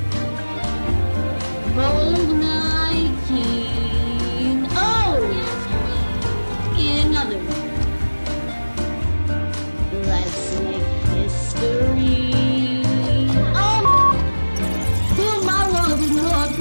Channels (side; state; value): both; inverted; correlation -1.00